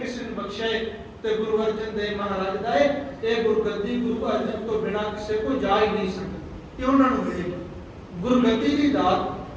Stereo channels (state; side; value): identical; both; correlation 1.00